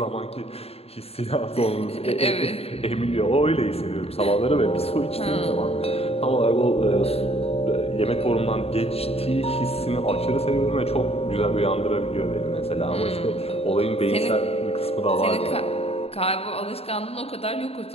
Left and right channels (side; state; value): right; late; 0.29 ms